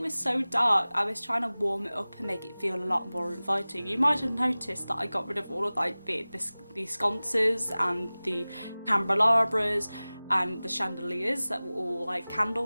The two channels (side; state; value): both; inverted; correlation -0.99